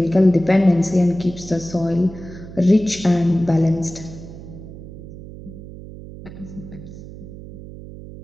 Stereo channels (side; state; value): right; noise; hum, 14 dB below the sound